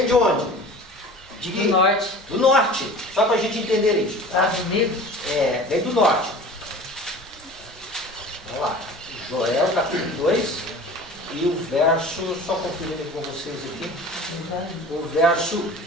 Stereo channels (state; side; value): normal; both; correlation 0.41